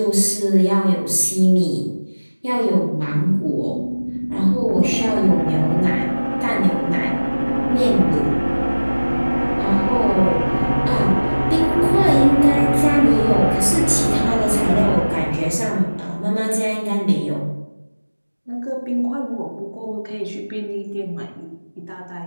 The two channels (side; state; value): both; inverted; correlation -1.00